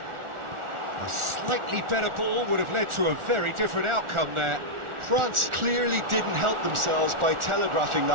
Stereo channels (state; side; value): late; left; 1.4 ms